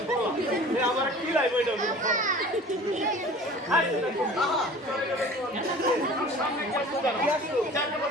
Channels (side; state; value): both; normal; correlation 0.43